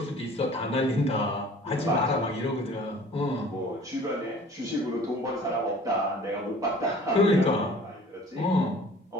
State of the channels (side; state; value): both; normal; correlation 0.48